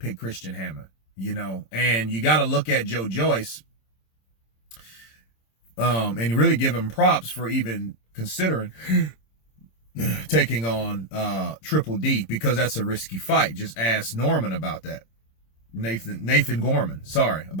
Christian Hammer, and you got to look at Joyce, and really give him props for even considering taking on Triple D, because that's a risky fight. Just ask Norman about that. Nathan Gorman, sorry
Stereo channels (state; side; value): late; right; 26 ms